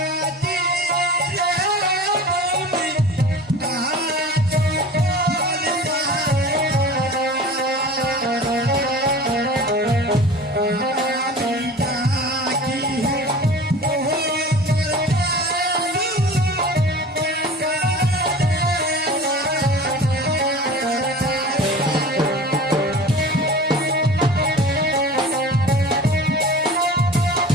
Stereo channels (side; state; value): both; normal; correlation 0.39